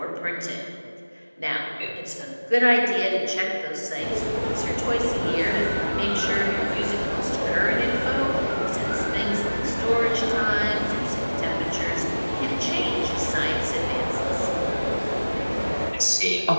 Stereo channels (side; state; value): both; inverted; correlation -1.00